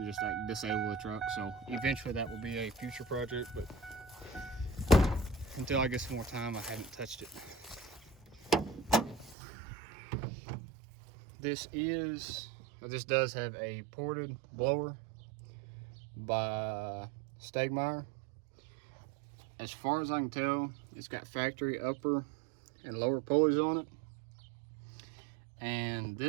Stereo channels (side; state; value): left; drops out; at 9.3 s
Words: just like disable the truck. So eventually that will be a future project, but until I get some more time, I haven't touched it. This does have a ported blower by Stegmeyer. As far as I can tell, it's got factory upper and lower pulleys on it. And